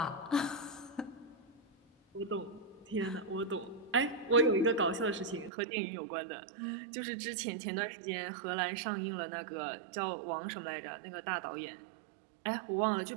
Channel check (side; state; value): left; drops out; at 5.5 s